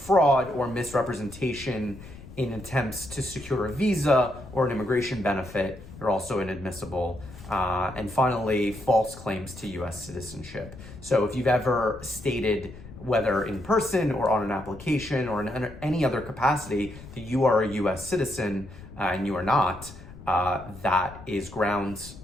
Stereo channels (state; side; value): noise; left; rumble, 16 dB below the sound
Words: or misrepresentation in attempts to secure a visa or an immigration benefit, you're also inadmissible. And finally, false claims to US citizenship. So if you've ever stated, whether in person or on an application or in any other capacity, that you are a US citizen and you are not, that is grounds